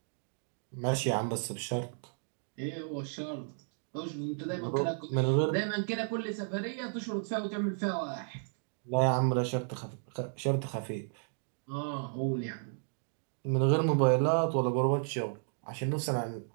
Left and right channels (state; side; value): silent; left; digital silence